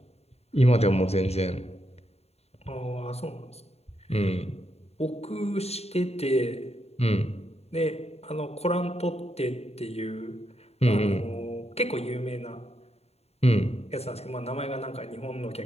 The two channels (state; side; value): late; right; 0.30 ms